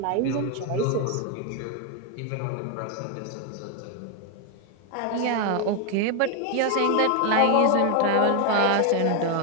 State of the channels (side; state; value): both; different; correlation 0.01